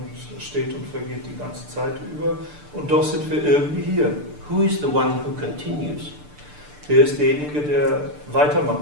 es steht und vergeht die ganze Zeit über. Und doch sind wir irgendwie hier. Who is the one who continues? Wer ist derjenige, der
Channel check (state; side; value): late; left; 6.8 ms